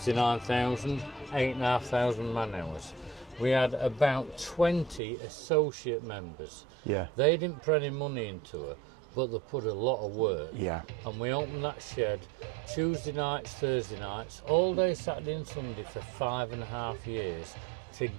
8,500 man hours. We had about 20 associate members. Yeah. They didn't put any money into her, but they put a lot of work. Yeah. And we opened that shed Tuesday nights, Thursday nights, all day Saturday and Sunday for 5.5 years to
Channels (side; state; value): left; drops out; at 5.0 s